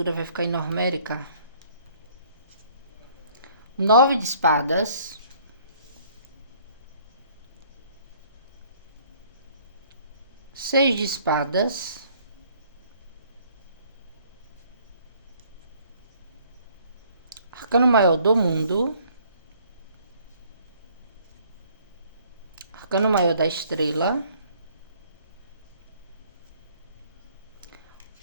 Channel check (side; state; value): both; inverted; correlation -0.59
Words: vai ficar enormérica. 9 de espadas. 6 de espadas. Arcano maior do mundo. Arcano maior da estrela.